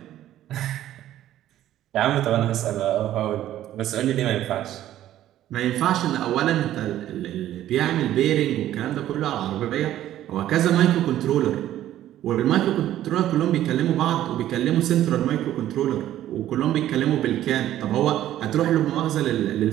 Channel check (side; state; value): left; quieter; 12.8 dB